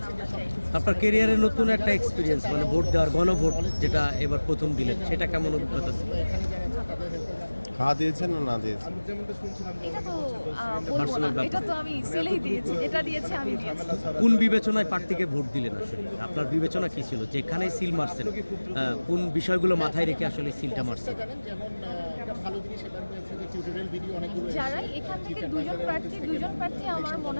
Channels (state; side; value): inverted; both; correlation -1.00